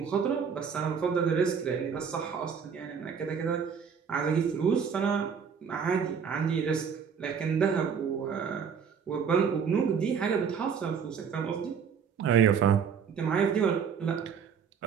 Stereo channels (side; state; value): left; quieter; 6.8 dB